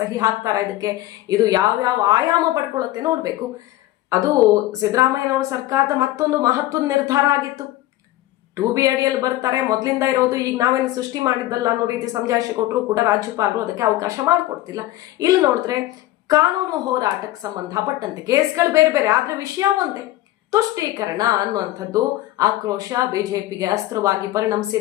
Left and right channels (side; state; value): right; quieter; 15.7 dB